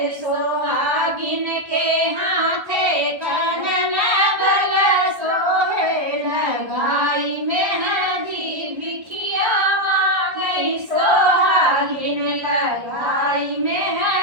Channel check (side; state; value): left; late; 1.3 ms